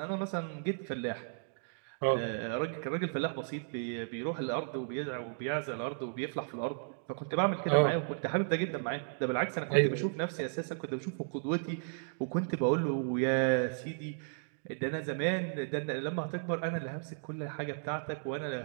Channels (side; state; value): left; silent; digital silence